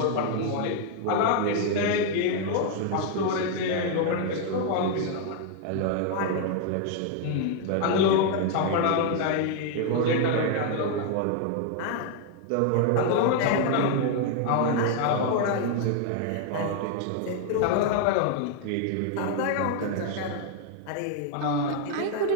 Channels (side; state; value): both; different; correlation 0.00